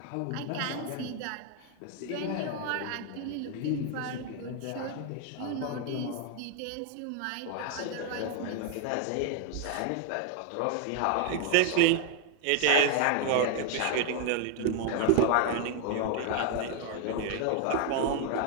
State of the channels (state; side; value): different; both; correlation 0.00